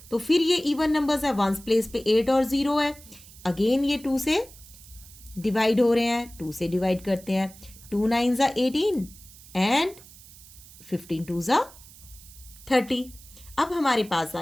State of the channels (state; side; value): noise; right; hiss, 20 dB below the sound